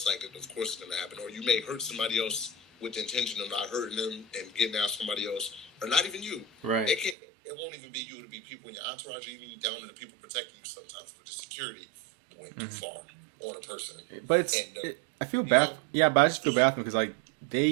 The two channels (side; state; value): left; drops out; at 7.2 s